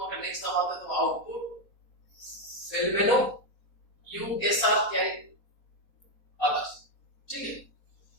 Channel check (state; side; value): late; right; 4.2 ms